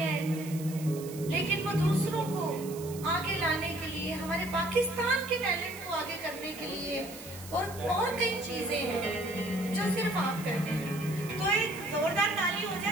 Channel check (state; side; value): noise; right; hiss, 15 dB below the sound